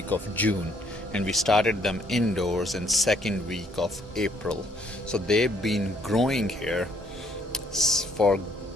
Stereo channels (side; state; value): both; normal; correlation 0.66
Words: of June, and we started them indoors in second week of April. So they've been growing here for